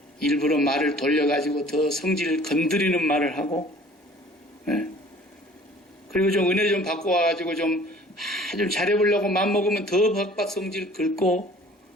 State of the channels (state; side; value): normal; both; correlation 0.50